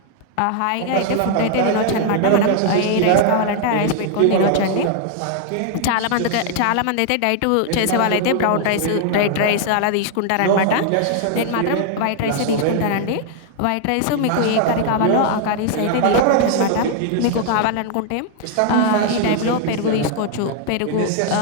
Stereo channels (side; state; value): both; different; correlation 0.00